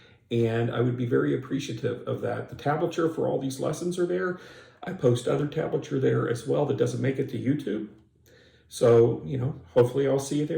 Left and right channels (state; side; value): identical; both; correlation 1.00